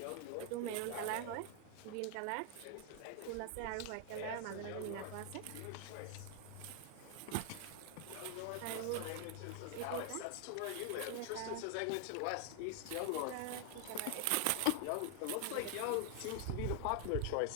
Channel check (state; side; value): different; both; correlation 0.00